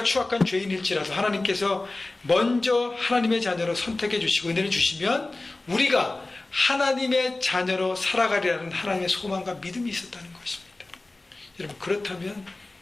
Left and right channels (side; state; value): right; quieter; 3.0 dB